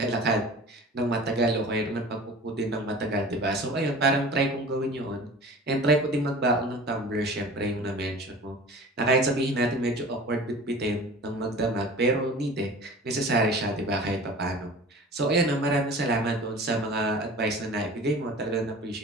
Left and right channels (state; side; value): normal; both; correlation 0.40